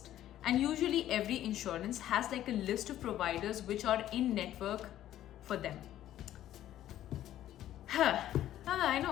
And usually every insurance has like a list of providers which are in network for them. I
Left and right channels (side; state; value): right; quieter; 12.6 dB